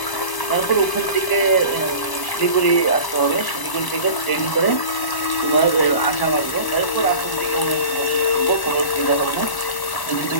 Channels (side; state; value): right; late; 1.0 ms